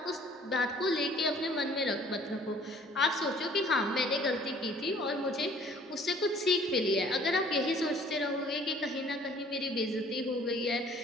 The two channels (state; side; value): normal; both; correlation 0.55